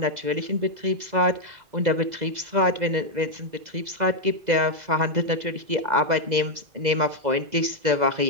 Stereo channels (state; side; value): late; left; 2.0 ms